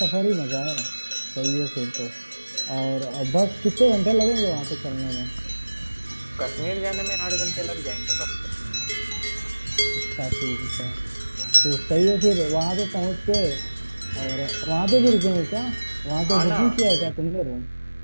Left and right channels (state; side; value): inverted; both; correlation -1.00